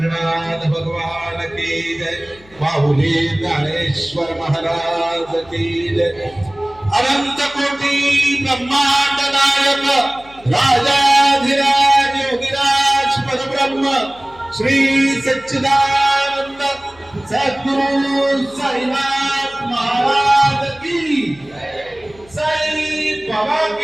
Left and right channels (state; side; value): noise; left; hum, 26 dB below the sound